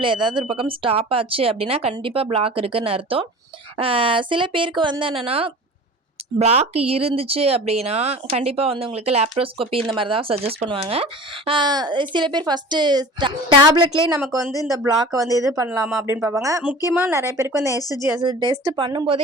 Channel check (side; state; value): both; normal; correlation 0.39